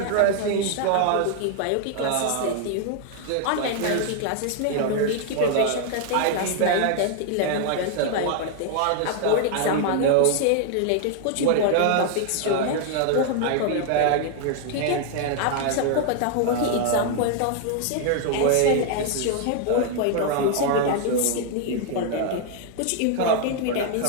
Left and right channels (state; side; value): different; both; correlation 0.00